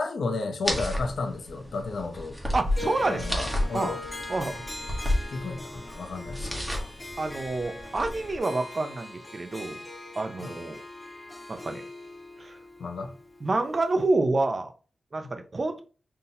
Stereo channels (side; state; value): both; normal; correlation 0.91